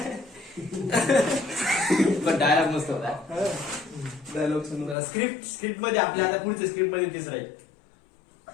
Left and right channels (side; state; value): right; drops out; at 5.0 s